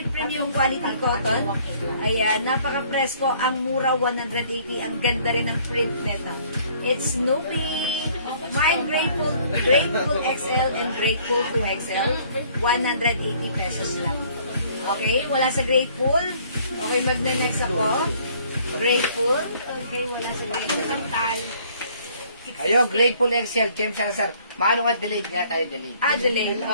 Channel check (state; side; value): inverted; both; correlation -0.59